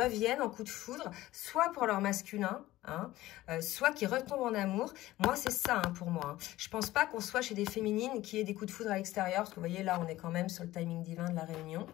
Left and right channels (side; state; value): right; quieter; 16.4 dB